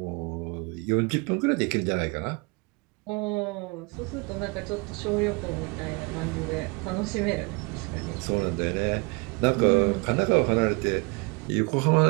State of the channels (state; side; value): quieter; left; 29.1 dB